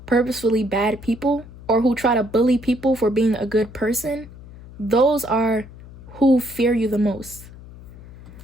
purposefully bad people, or who try to bully people for being a good person, those are who fear you the most.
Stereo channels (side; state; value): left; noise; hum, 18 dB below the sound